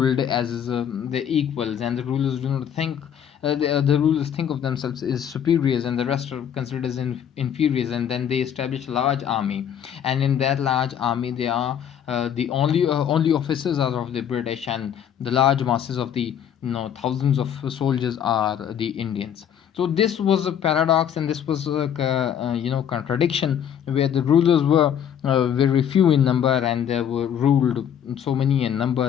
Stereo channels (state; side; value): quieter; right; 9.0 dB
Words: as the equals, and the rulers do not think the rulers think of themselves as superiors, and the rest are considered as inferiors, and then they establish a large army, and in that large army they are the only officers are of the British, and the large masses of the thousands of soldiers are the Indians. So this was a paradox, and this was a contradiction, where the rulers were very few in number, and they were ruled so many in